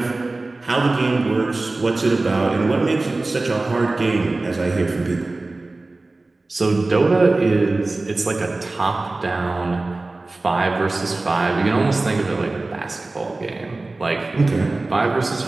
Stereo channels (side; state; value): left; quieter; 3.2 dB